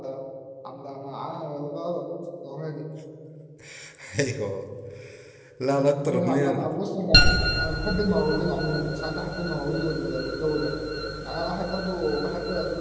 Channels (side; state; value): both; identical; correlation 1.00